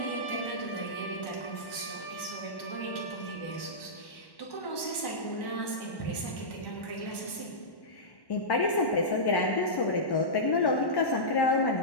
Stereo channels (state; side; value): late; right; 1.1 ms